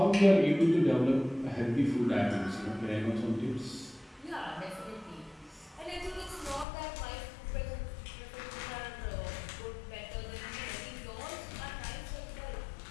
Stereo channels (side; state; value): right; drops out; at 6.7 s